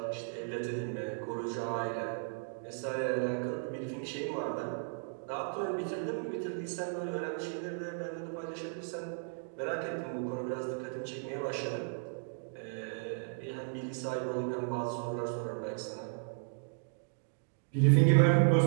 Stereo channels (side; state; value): left; silent; digital silence